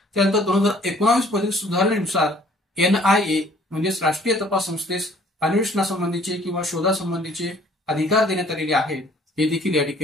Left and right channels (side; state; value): both; normal; correlation 0.57